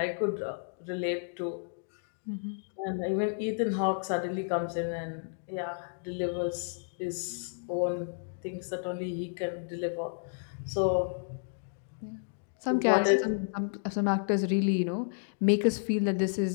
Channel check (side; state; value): right; silent; digital silence